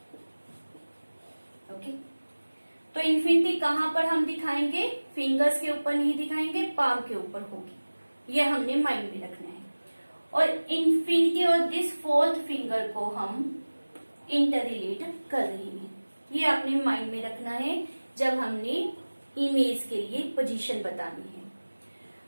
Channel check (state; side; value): inverted; both; correlation -1.00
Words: ओके। तो इन्फिनिटी कहां पर हम दिखाएंगे, फिंगर्स के ऊपर नहीं दिखाएंगे, पाम के ऊपर होगी। ये हमने माइंड में रखना है। और इन्फिनिटी और दिस फोर्थ फिंगर को हम इंटररिलेट कर रहे हैं। ये आपने माइंड में रखना है जब हमने इमेज के लिए पोजीशन बतानी है।